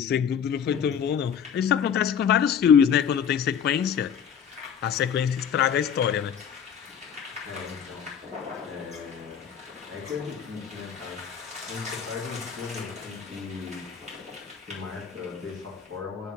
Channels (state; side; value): quieter; right; 7.8 dB